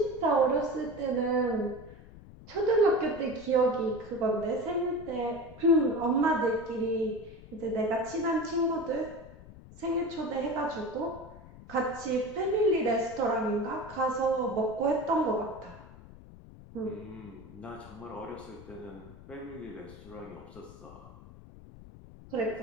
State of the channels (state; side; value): noise; left; rumble, 18 dB below the sound